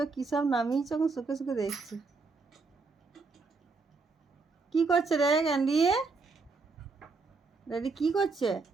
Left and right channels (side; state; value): left; quieter; 4.2 dB